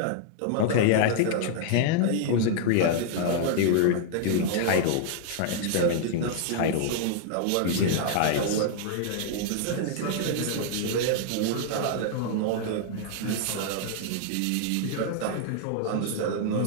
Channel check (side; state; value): both; different; correlation 0.00